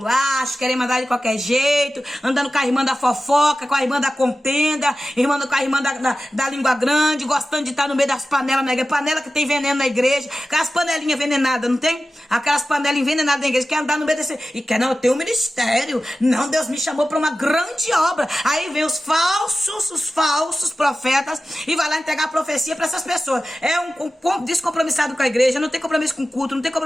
queremos andar de qualquer jeito, andando com a irmã da fofoca, com a irmã da contenda, com a irmã da língua grande, gostando de estar no meio das panelas na igreja, panela que tem veneno na igreja, aquelas panelinhas envenenadas, não tem? Aquelas panelas envenenadas na igreja, quer andar no meio desse... E quer, não, eu tenho um ministério, não, Deus me chamou para uma grande obra. Aí vem os falsos profetas e vai lá entregar a profecia para essas pessoas. É um descompromissado com a igreja, não tem compromisso com culto, não tem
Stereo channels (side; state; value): both; normal; correlation 0.94